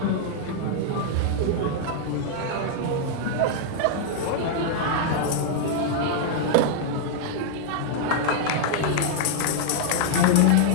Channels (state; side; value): different; both; correlation 0.00